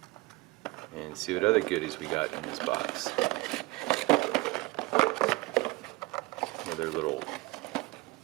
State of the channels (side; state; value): left; quieter; 23.6 dB